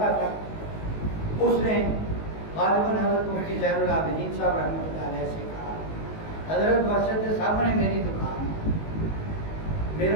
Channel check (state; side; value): late; right; 19 ms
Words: تھا، اس نے غالباً حضرت مفتی زین العابدین صاحب رحمۃ اللہ علیہ سے کہا حضرت مسجد کے سامنے میری دکان ہے،